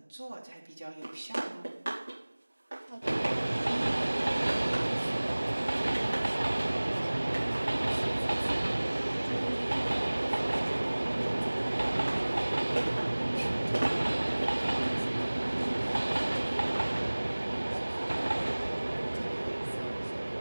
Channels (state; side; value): inverted; both; correlation -1.00